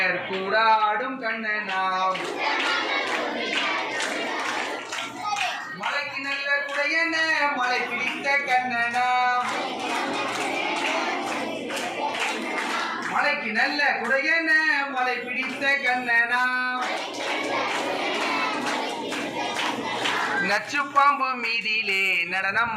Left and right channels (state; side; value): identical; both; correlation 1.00